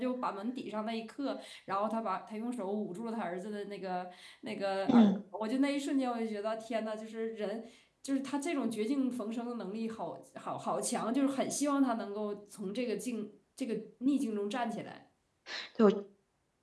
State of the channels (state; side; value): identical; both; correlation 1.00